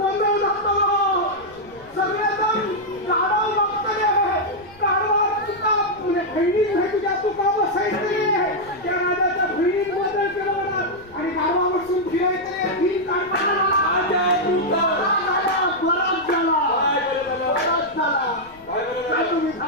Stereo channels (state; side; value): noise; left; rumble, 25 dB below the sound